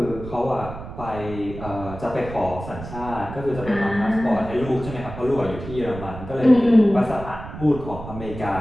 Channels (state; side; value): noise; right; rumble, 11 dB below the sound